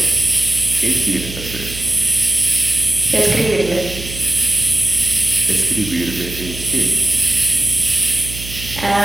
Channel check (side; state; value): right; noise; hum, 11 dB below the sound